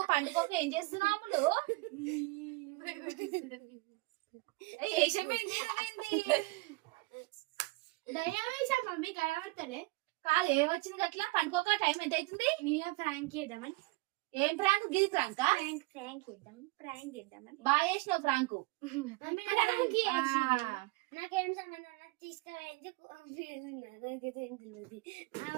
పండుగకి ఏం చేస్తున్నావు? దయ్యం వేసా మమ్మీ కనబడతలే. కాదు ఏమొచ్చింది అట్లా? పండుగ టైం ఎంత అవుతుంది? నేను ప్రాంక్ చేద్దామని. ఏం ప్రాంక్? గిది ప్రాంక్ ప్రాంక్ చేద్దామని బాగా చేసినావు ప్రాంక్. నాకేం సంబంధం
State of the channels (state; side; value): quieter; left; 23.1 dB